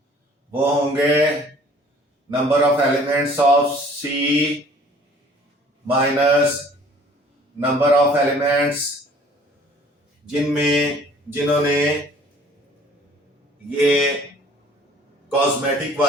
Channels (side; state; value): both; normal; correlation 0.53